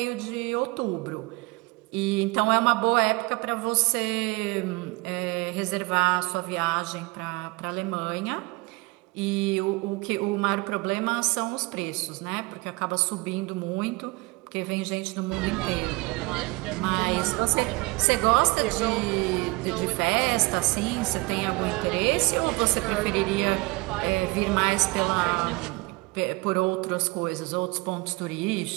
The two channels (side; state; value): left; quieter; 24.8 dB